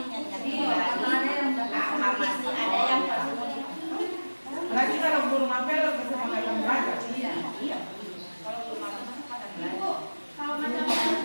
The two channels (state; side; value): inverted; both; correlation -1.00